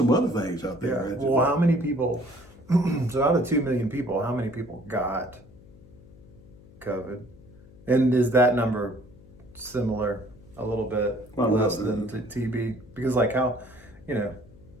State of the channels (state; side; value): noise; left; hum, 23 dB below the sound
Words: other things out there. Yeah. Well, how many people? So out of 2 million people, how many people got COVID? And is that number similar, a little bit less than TB? Because I don't